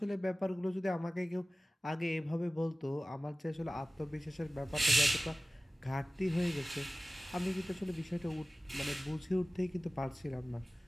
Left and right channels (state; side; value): normal; both; correlation 0.97